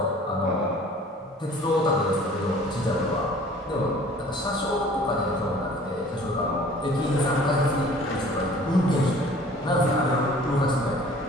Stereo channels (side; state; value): both; normal; correlation 0.50